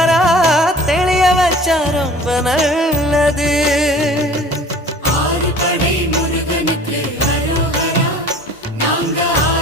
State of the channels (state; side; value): normal; both; correlation 0.46